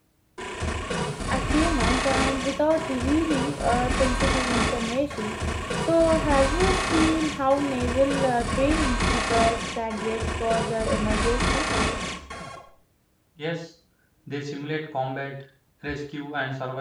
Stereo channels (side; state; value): both; identical; correlation 1.00